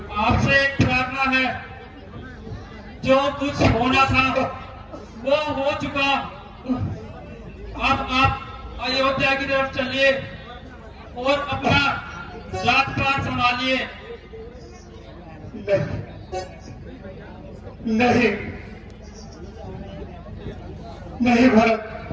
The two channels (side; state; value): both; identical; correlation 1.00